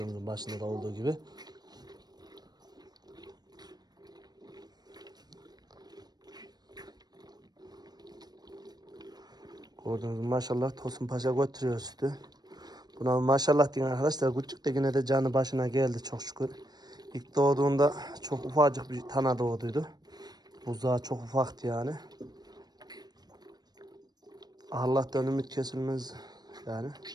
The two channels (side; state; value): left; late; 0.19 ms